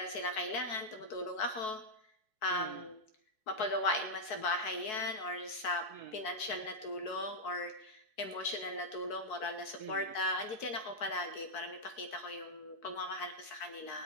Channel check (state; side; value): late; right; 4.7 ms